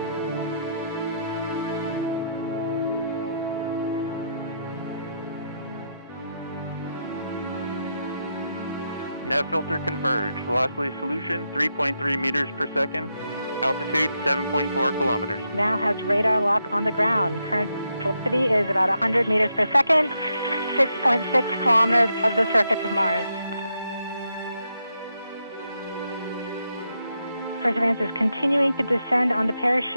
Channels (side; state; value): both; inverted; correlation -0.81